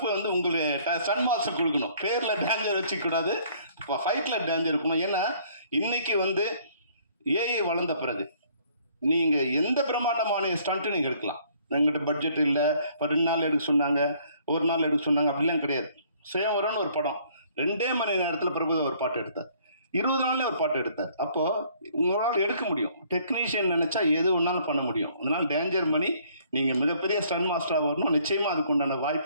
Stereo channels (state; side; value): inverted; both; correlation -0.61